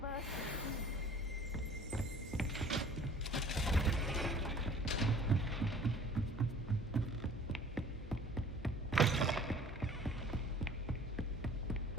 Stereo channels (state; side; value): normal; both; correlation 0.49